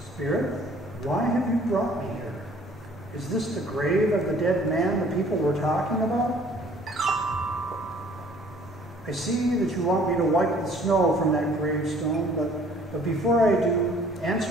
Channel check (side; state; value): both; normal; correlation 0.56